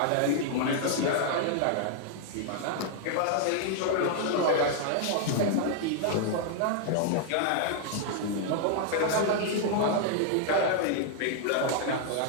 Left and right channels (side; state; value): both; different; correlation -0.01